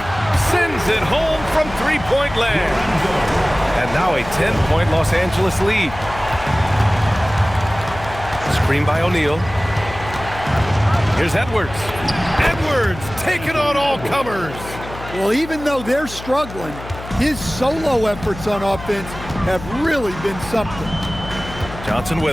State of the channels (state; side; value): noise; left; hum, 13 dB below the sound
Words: sends it home from 3-point land. And now a 10-point Los Angeles lead. Screen by O'Neal. Here's Edwards. Edwards taking on all comers. Well, even though they're struggling, his solo efforts on offense have really been something. Johnson